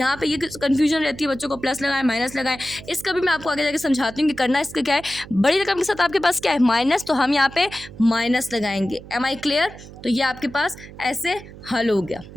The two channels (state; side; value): noise; right; hum, 17 dB below the sound